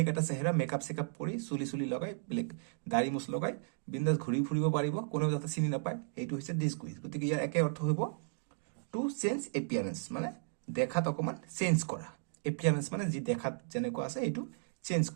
এটা চেহাৰা মেকআপ চেকআপ কৰি চুলি লগাই বেলেগ দাড়ি মুছ লগাই বিন্দাস ঘূৰি ফুৰিব পাৰিব কোনেও যাতে চিনি নাপায় এইটো হৈছে ডিসগুইজ গতিকে ইয়াৰ একে অৰ্থ হ'ব টু চেঞ্জ এপিয়াৰেন্স মানে দেখাত অকমান চেঞ্জ কৰা এপিয়াৰেন্স মানে যি দেখাত যেনেকুৱা আছে এইটো চেঞ্জ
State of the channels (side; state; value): left; silent; digital silence